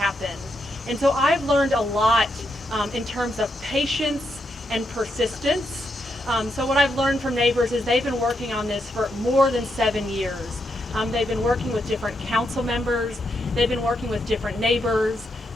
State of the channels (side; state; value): both; normal; correlation 0.82